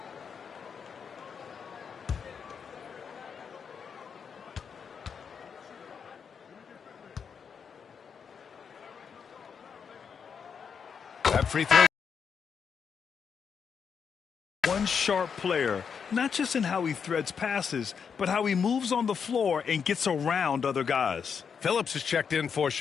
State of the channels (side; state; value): right; quieter; 6.6 dB